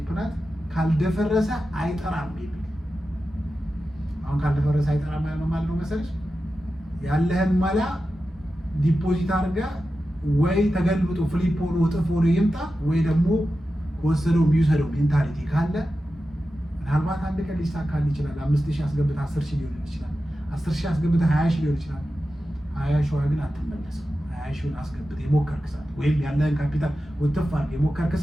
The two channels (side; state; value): both; normal; correlation 0.92